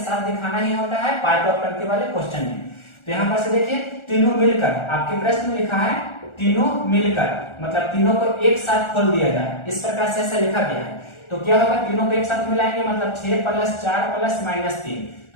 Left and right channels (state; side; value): late; right; 1.4 ms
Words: साथ दिखाना ही होता है पार्ट ऑफ टर्म के वाले क्वेश्चन में। तो यहाँ पर से देखिए तीनों मिलकर, आपके प्रश्न में लिखा है तीनों मिलकर, मतलब तीनों को एक साथ खोल दिया जाए, इस प्रकार से ऐसा लिखा गया है। तो क्या होगा, तीनों को एक साथ मिलाएंगे मतलब 6 + 4 + -3।